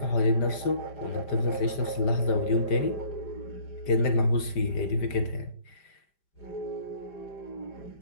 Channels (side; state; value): right; late; 5.1 ms